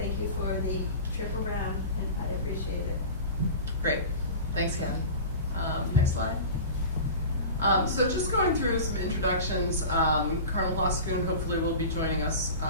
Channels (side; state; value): both; inverted; correlation -0.34